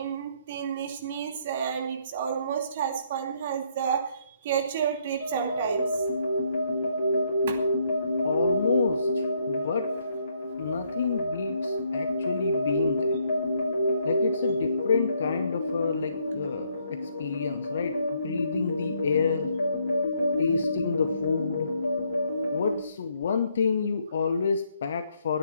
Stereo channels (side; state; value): both; inverted; correlation -0.71